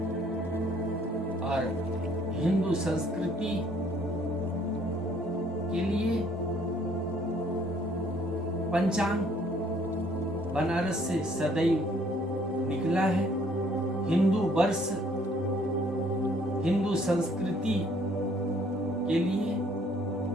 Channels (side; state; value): both; normal; correlation 0.62